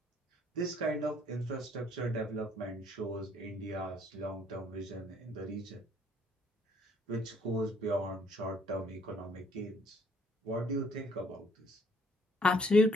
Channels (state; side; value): normal; both; correlation 0.63